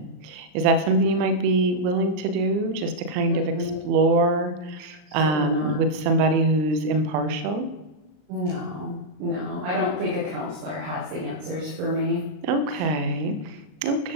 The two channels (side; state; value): left; late; 39 ms